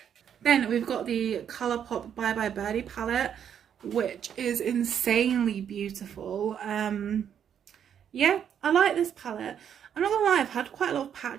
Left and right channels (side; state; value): left; quieter; 8.7 dB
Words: Then we've got the Colourpop Bye Bye Birdie palette, which is insanely beautiful. Yeah, I like this palette. I'm not going to lie, I've had quite a lot of